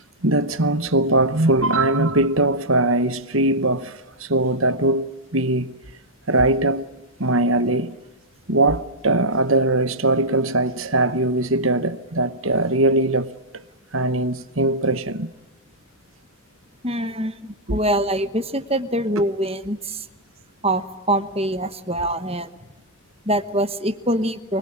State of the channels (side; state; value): both; normal; correlation -0.07